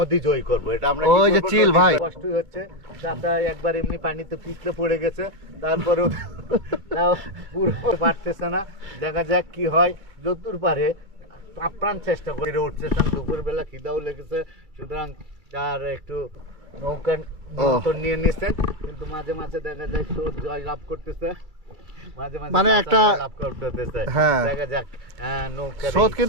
জয় করব। এটা আমরা কি ওই যে করবো? চিল নদী ভাই। কষ্ট হচ্ছে, চাচা একবার এমনি পানিতে পিছলে পড়ে গেছে, তারপরেও তাও পুরো পারতেছে না। দেখা যাক কি হয়, যতদূর পারে আপ্রাণ চেষ্টা করে উঠতেছেন। দুপুর বেলা খিদাও লেগেছে, সুতরাং তার একটু নৌকা নিয়ন্ত্রণ নিয়ে নিচ্ছেন, কিন্তু মাঝে মাঝে দেখা যায় স্রোত জয় লাভ করতেছে, মাঝে মাঝে মানে একটা লাভ করতেছে। হ্যাঁ, দেখা যাক নৌকা স্রোত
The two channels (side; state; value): left; late; 2.3 ms